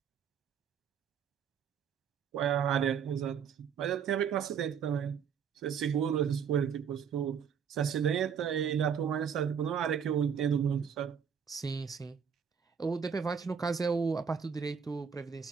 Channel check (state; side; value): quieter; left; 7.4 dB